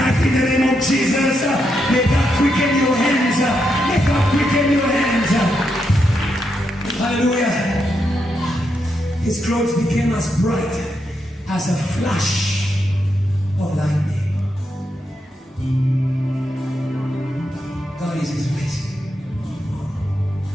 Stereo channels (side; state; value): both; normal; correlation 0.82